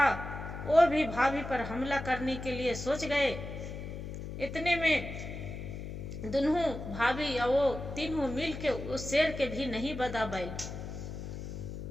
वो भी भाभी पर हमला करने के लिए सोच गए। इतने में दोनों भाभी और वो तीनों मिल के उस शेर के भी नहीं बदा बैल,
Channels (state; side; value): noise; left; hum, 8 dB below the sound